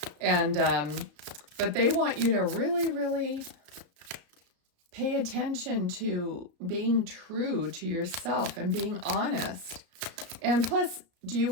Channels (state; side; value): late; left; 34 ms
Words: And, but they want you to really, really pay attention to being true to yourself and being honest. And plus, do you